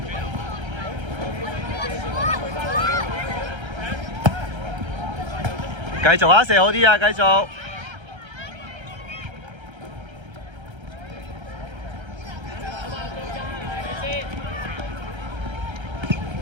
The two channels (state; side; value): late; left; 1.3 ms